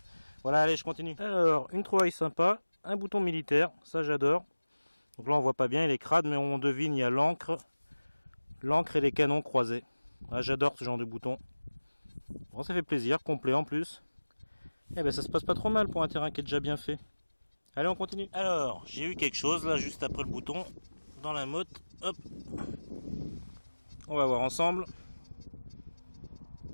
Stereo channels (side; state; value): both; inverted; correlation -1.00